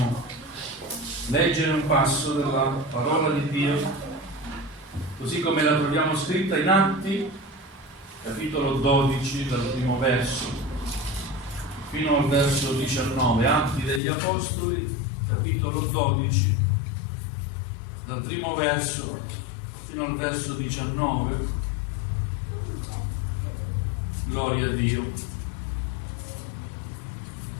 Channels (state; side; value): drops out; right; at 14.0 s